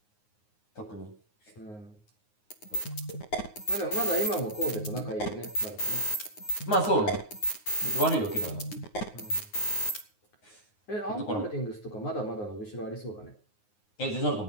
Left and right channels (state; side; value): late; right; 9.5 ms